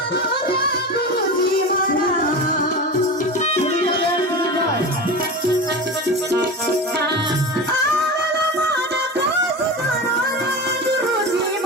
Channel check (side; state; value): both; normal; correlation 0.27